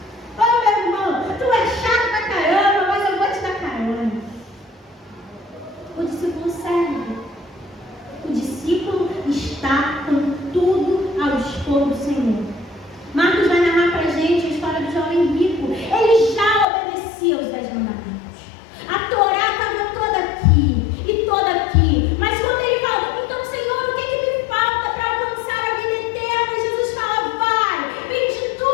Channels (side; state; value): right; drops out; at 16.7 s